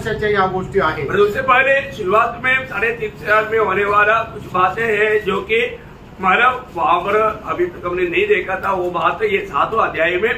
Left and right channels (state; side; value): identical; both; correlation 1.00